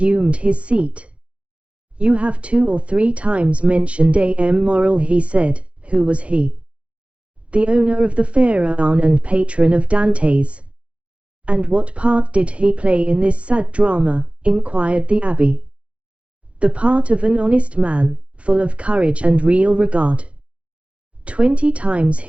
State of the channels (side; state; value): left; late; 0.061 ms